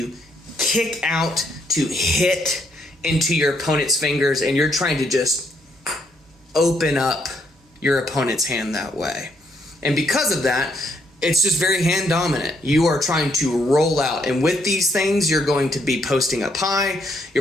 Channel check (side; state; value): both; normal; correlation 0.73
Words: kick out to hit into your opponent's fingers, and you're trying to just open up your opponent's hand that way. And because of that, it's just very hand dominant. You are trying to roll out, and with these things, you're going to be posting up high.